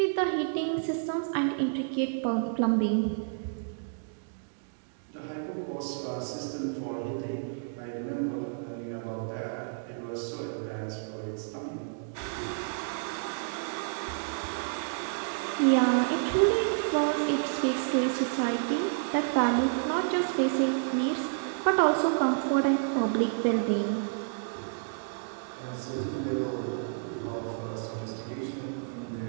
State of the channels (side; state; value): left; silent; digital silence